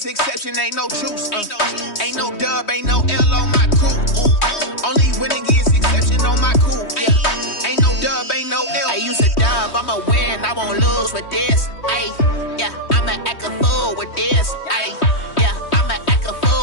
exception, ain't no truce. Ain't no dub, ain't no L on my crew. Only winning is exception on my crew. Yeah, ain't no dub, ain't no L. I use a dub, I'ma win, I won't lose with this. Ay, yeah, I'ma act a fool with this. Ay, yeah, I'ma act a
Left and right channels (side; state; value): right; late; 3.2 ms